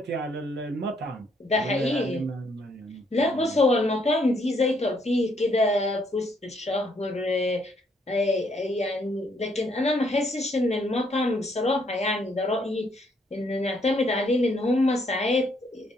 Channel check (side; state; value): both; normal; correlation 0.71